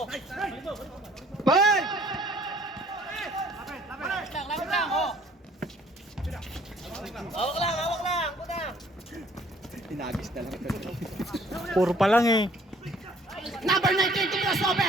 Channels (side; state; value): both; normal; correlation 0.58